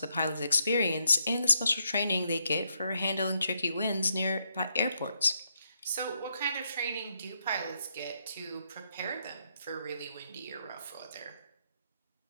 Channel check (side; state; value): both; inverted; correlation -0.78